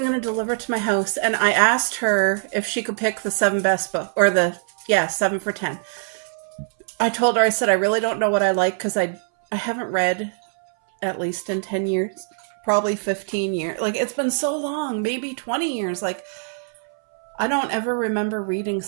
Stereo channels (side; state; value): left; silent; 61 dB below the other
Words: going to deliver it to my house. And I asked her if she could pick the 7 best book, or 7 for 10. I told her, I said, I really don't know what I like because I haven't read at least in 10 years, probably 15 years. Like, it's been so long, maybe 20 years. Like, I don't ever remember reading